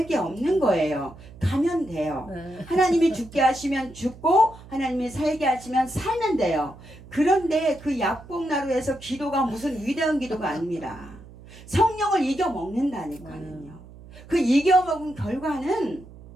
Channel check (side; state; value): right; noise; hum, 19 dB below the sound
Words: 게 없는 거예요. 가면 돼요. 하나님이 죽게 하시면 죽고 하나님이 살게 하시면 살면 돼요. 그런데 그 약복나루에서 기도가 무슨 위대한 기도가 아닙니다. 성령을 이겨먹는다니까요. 그 이겨먹은 결과는